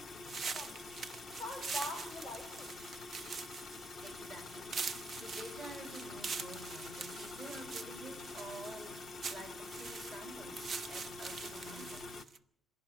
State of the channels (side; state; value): both; normal; correlation 0.75